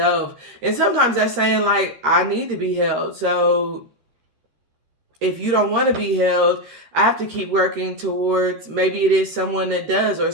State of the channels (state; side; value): late; left; 13 ms